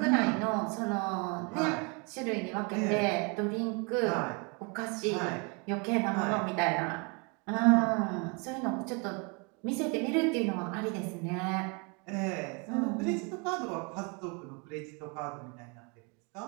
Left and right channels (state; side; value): quieter; left; 32.6 dB